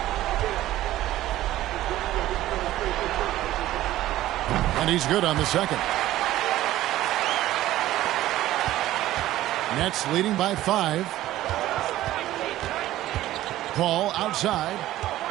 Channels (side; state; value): left; quieter; 14.7 dB